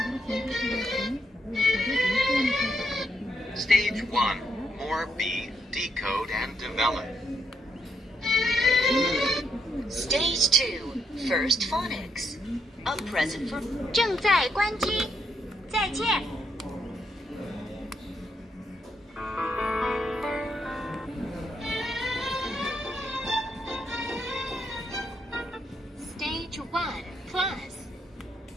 Stage 1. More B. Decode and develop. Stage 2, First Phonics, a present for 正在关机，再见。Stage 1 Plus.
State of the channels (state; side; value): normal; both; correlation 0.76